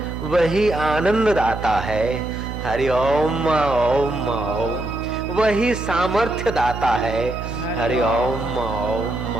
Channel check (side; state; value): right; noise; hum, 7 dB below the sound